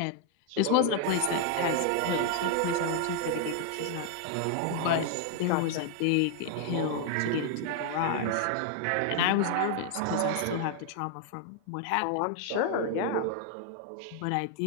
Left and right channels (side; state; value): both; different; correlation 0.00